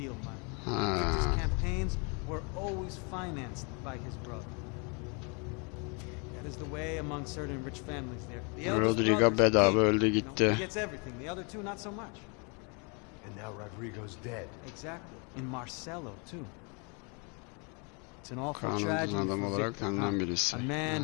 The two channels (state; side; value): quieter; right; 34.0 dB